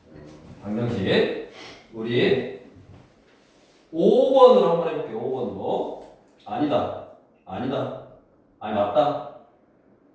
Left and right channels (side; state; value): both; identical; correlation 1.00